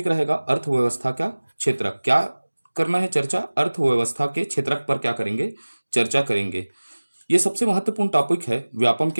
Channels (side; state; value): both; inverted; correlation -1.00